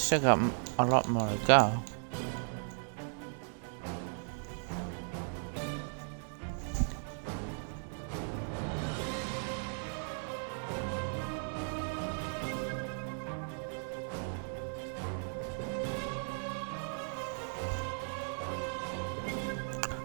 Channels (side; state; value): left; silent; 54 dB below the other